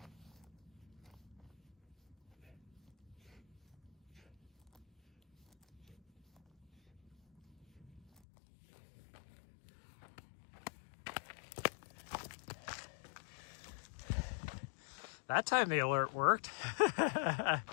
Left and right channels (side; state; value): right; drops out; at 8.2 s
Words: That time the alert worked. Falling